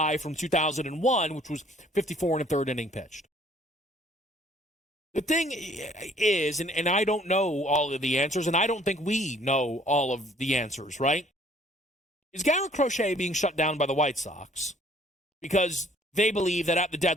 from 2001, which was 54 and a third inning pitched. The thing is, and I don't know all of the answers, and I don't think we know all of the answers, right? Is Garrett Crochet being shut down by the White Sox because they believe that at the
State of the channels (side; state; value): both; normal; correlation 0.59